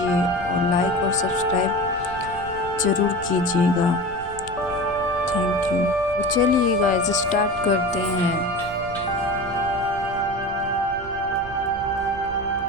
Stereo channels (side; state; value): right; noise; rumble, 16 dB below the sound